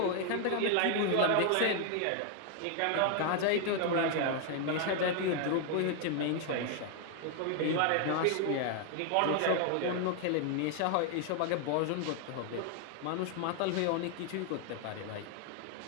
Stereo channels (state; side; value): different; both; correlation 0.00